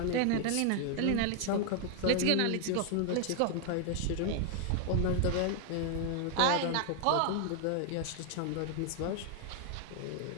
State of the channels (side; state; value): both; different; correlation 0.00